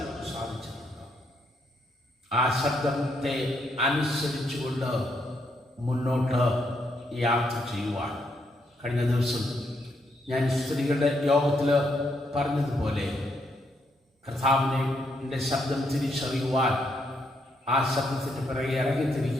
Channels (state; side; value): normal; both; correlation 0.76